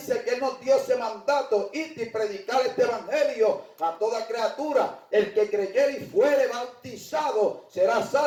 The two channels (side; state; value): both; identical; correlation 1.00